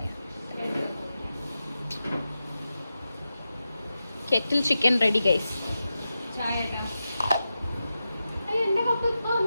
കെറ്റിൽ ചിക്കൻ റെഡി ഗൈസ്.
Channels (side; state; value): both; inverted; correlation -0.91